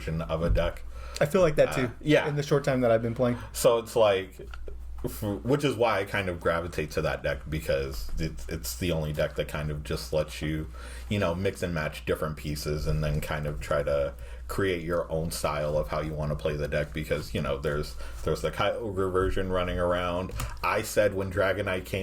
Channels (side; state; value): both; identical; correlation 1.00